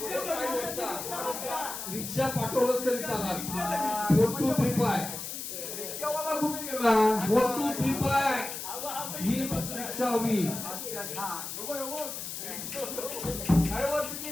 रिक्षा पाठवलंच तरी चालेल. 4 2 3 5 रिक्षावाला कुठे गेला? 4 2 3 5 ही रिक्षा हवी. अरे बा तुझी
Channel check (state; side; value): noise; left; hiss, 7 dB below the sound